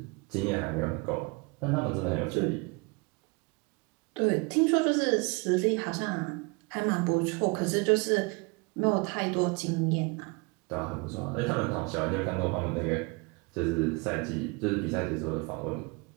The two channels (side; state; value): left; quieter; 29.1 dB